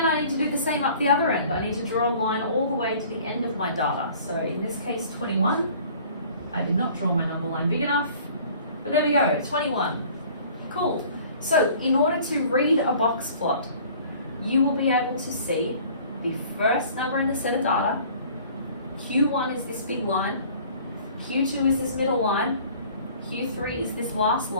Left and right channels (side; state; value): both; inverted; correlation -0.50